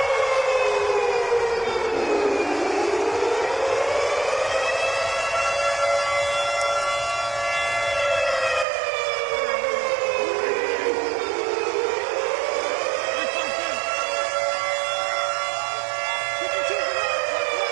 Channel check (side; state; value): left; drops out; at 8.7 s